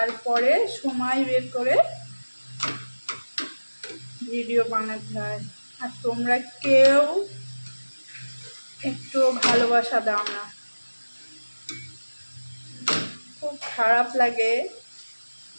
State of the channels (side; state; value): both; inverted; correlation -1.00